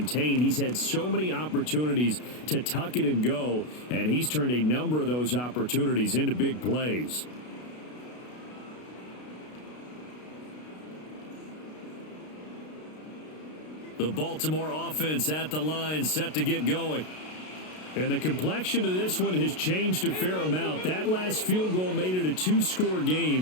He's had so many opportunities to tuck it and go, and he's turned a number of those opportunities into big plays. The Baltimore offense at the line, set to get going. And the complexion of this one has changed a fair amount. That last field goal made it a 2-score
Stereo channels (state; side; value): late; right; 32 ms